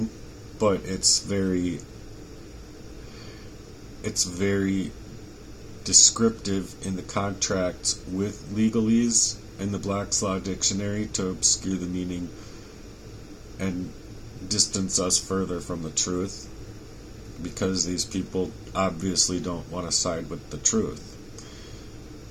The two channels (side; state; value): both; identical; correlation 1.00